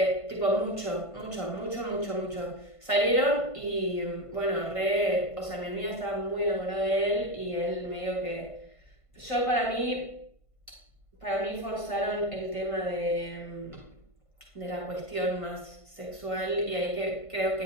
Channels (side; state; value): right; late; 1.5 ms